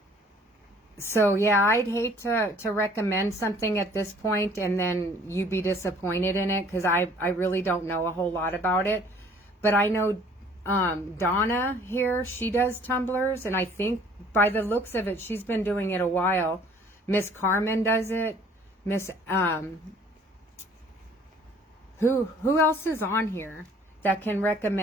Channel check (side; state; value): both; normal; correlation 0.55